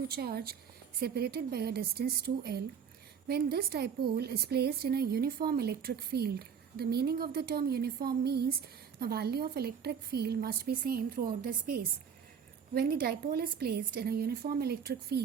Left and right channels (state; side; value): quieter; left; 7.1 dB